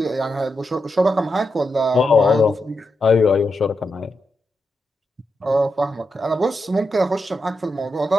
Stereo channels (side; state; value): both; normal; correlation 0.86